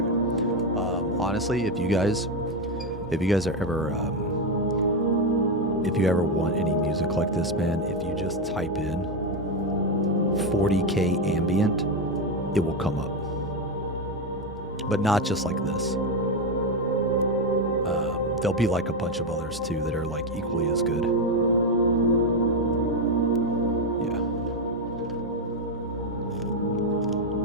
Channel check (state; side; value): normal; both; correlation 0.08